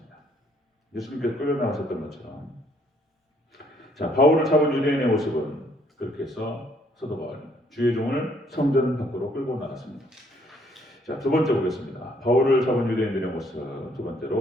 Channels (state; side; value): normal; both; correlation 0.66